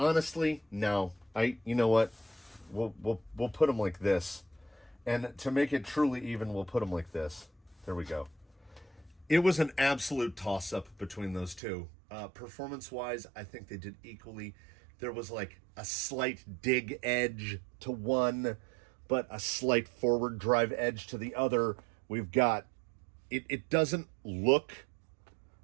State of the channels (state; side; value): drops out; left; at 11.6 s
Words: no. You know what? We'll put them like this, and to make it truly even, we'll put them like this. There we go. It was an absolute toss-up between those two. Performance-wise, I think they did equally. There was like a slight dig edge to one, but a slight forward drive edge to the other. We've got, it doesn't look